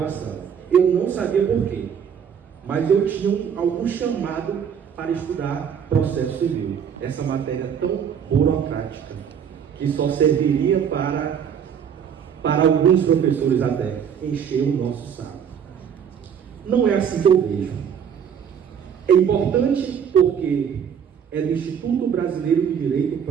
Eu não sabia por quê, mas eu tinha algum chamado para estudar processo civil. Essa matéria tão burocrática, que só serviria para alguns professores até encher o nosso saco. Não é assim que eu vejo. É importante porque é do Instituto Brasileiro de Direito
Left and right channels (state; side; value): quieter; left; 7.8 dB